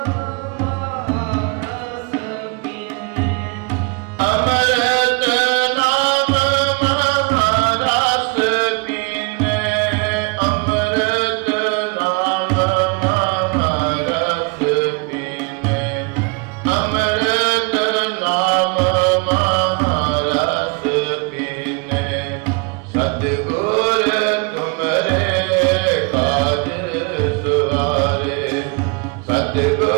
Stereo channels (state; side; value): quieter; left; 31.0 dB